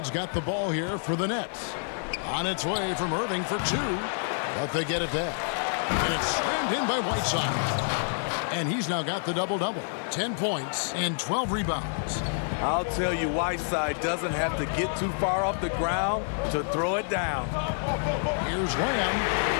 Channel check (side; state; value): right; silent; digital silence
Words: got the ball here for the Nets. On its way from Irving for 2, but they get it back. And it's slammed in by Whiteside. And he's now got the double-double. 10 points and 12 rebounds. I'll tell you, Whiteside doesn't have to get too far off the ground to throw it down. Here's Lamb.